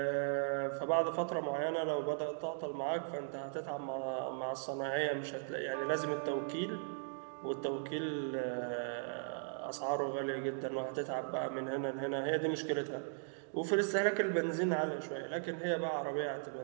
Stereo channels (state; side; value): silent; left; digital silence